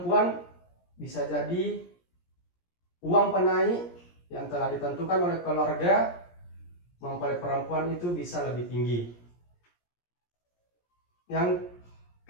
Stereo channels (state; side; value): late; right; 17 ms